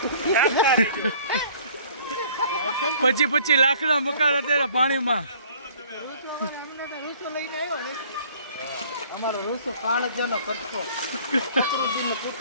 પછી લાકડા મકાન અત્યારે પાણીમાં. ઋતુ લઈને આવ્યો ને અમારો ઋતુ કાળજાનો કટકો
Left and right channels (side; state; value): both; inverted; correlation -0.54